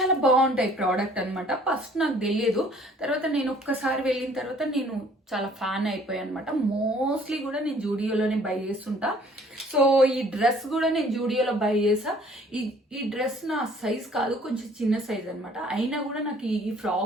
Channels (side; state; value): both; normal; correlation 0.56